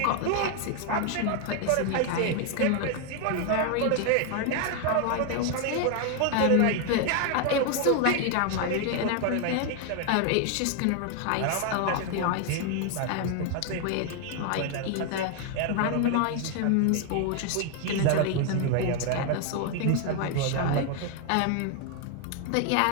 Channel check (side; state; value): both; different; correlation 0.00